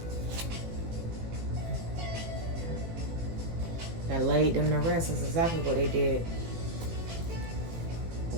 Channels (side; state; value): left; late; 18 ms